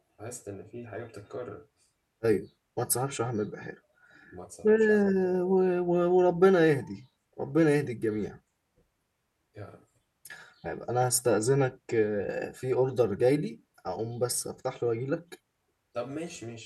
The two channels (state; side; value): identical; both; correlation 1.00